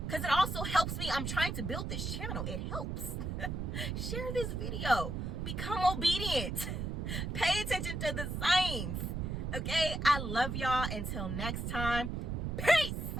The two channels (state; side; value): noise; right; rumble, 3 dB below the sound